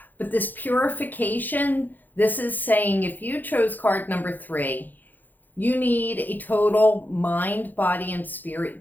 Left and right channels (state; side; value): late; right; 0.086 ms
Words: But this purification, this is saying if you chose card number 3, you need a total mind, body, and